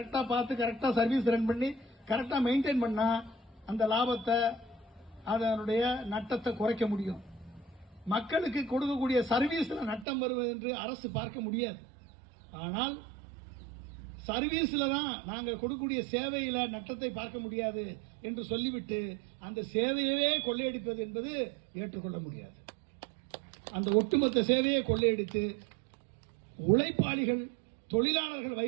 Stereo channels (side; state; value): left; drops out; at 10.1 s